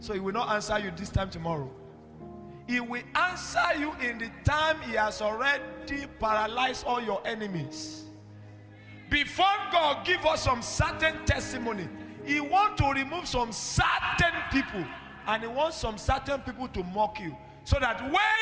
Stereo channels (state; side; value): identical; both; correlation 1.00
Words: he will not answer you this time tomorrow. He will answer you in the time he has already paralyzed all your enemies. Before God give us some certain testimony, he want to remove some certain people, and he wants some certain people to mock you, so that